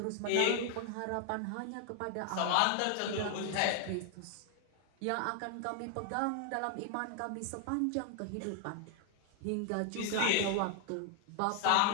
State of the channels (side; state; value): both; different; correlation 0.00